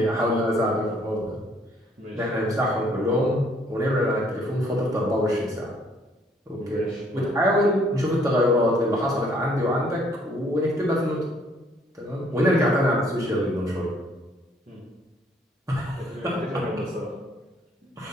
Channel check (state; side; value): normal; both; correlation 0.64